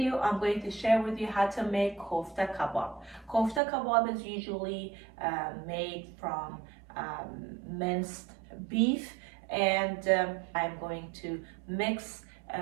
I'm going to share with you how to make Kofta Kabob. Kofta Kabob is usually made from minced beef, and I'm going to mix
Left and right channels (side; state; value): left; drops out; at 3.6 s